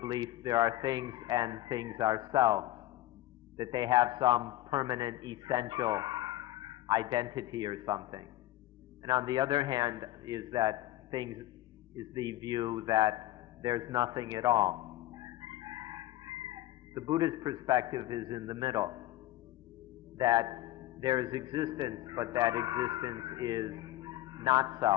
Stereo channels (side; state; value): right; quieter; 15.6 dB